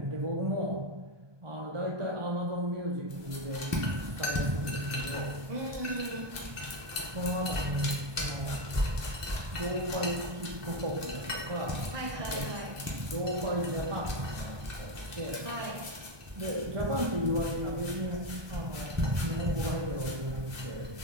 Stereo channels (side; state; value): left; late; 1.2 ms